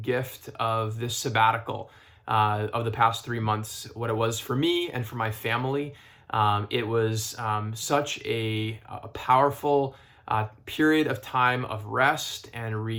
gift of this sabbatical of the past 3 months, what it was for me and for my family. It was such a powerful period of time of rest and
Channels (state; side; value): identical; both; correlation 1.00